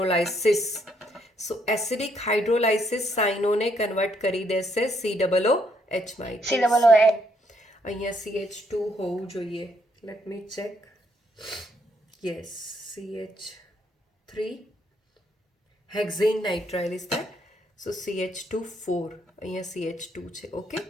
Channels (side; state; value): both; normal; correlation 0.72